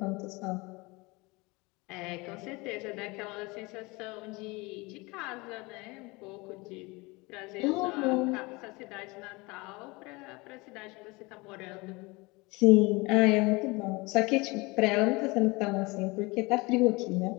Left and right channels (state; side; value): quieter; right; 24.7 dB